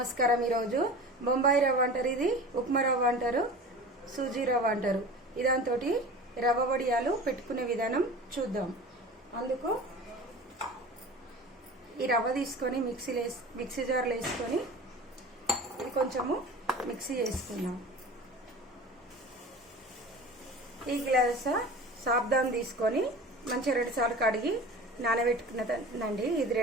ఈరోజు బొంబాయి రవ్వ అంటారు, ఇది ఉప్మా రవ్వ అంటారు, సూజీ రవ్వ అంటారు. ఇదాంతో రవ్వ వడియాలు పెట్టుకునే విధానం చూద్దాం. అందుకు ఈ రవ్వ తీసుకొని మిక్సీ జార్లో వేసుకొని ఇది కొంచెము మిక్సీ చేసుకుందాం. ఈ గ్లాస్ సాబ్దాన్ తీసుకొని మంచిగా 2 సార్లు కడిగి నానబెట్టుకున్నదండి. ఇది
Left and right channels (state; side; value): normal; both; correlation 0.37